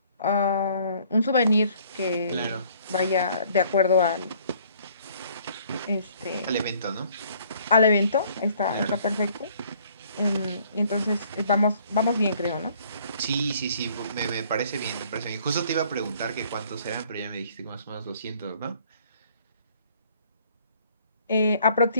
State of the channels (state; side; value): inverted; both; correlation -0.59